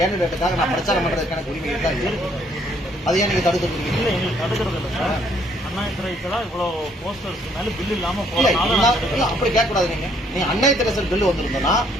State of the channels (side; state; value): both; normal; correlation 0.66